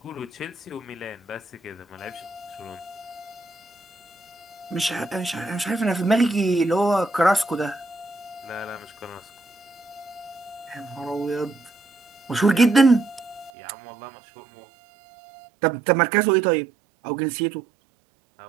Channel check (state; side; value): drops out; left; at 13.5 s